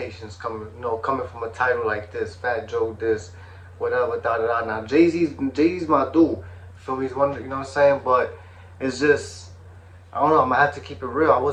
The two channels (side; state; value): both; identical; correlation 1.00